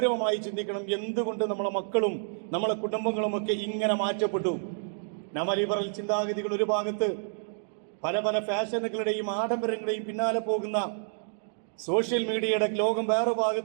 ചിന്തിക്കണം. എന്തുകൊണ്ട് നമ്മളെ മക്കളും നമ്മളെ കുടുംബങ്ങളും ഒക്കെ ഇങ്ങനെ മാറ്റപ്പെട്ടു? നവലിബറൽ ചിന്താഗതികൾ ഒരു ഭാഗത്ത്, പല പല ഫാഷനുകളുടെയും ആഡംബരങ്ങളുടെയും പിന്നാലെ പോകുന്ന സോഷ്യൽ മീഡിയയുടെ ലോകം വേറെ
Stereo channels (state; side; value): silent; left; digital silence